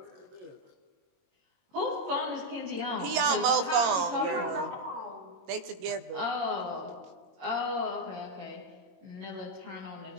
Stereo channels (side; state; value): left; late; 22 ms